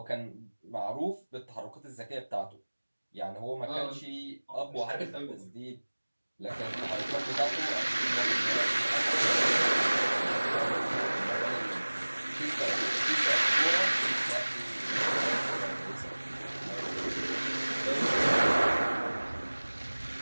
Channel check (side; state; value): both; inverted; correlation -1.00